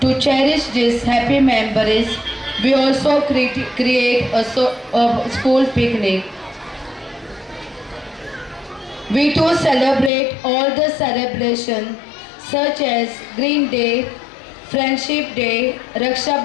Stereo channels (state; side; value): drops out; right; at 10.1 s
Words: To cherish these happy memories, we also create a school picnic. We too celebrate all the celebrations such as Green Day, Friendship Day, Raksha